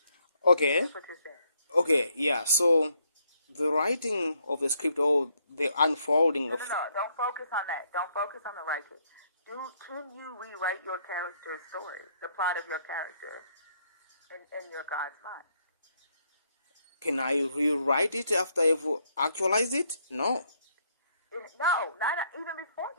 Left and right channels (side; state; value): both; inverted; correlation -0.72